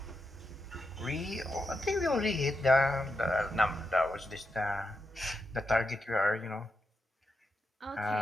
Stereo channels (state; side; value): normal; both; correlation 0.86